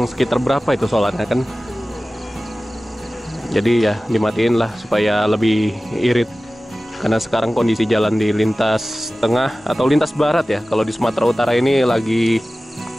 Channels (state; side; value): normal; both; correlation 0.96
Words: sekitar berapa itu solarnya kan? Jadi ya dimatiin lah supaya lebih irit. Karena sekarang kondisi jalan di lintas tengah atau lintas barat ya, kalau di Sumatera Utara ini lagi